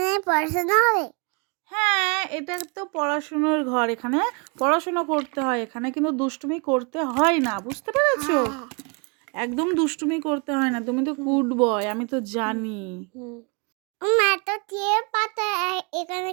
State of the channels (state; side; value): quieter; left; 33.6 dB